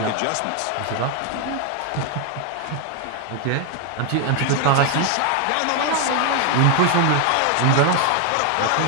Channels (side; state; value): both; different; correlation 0.01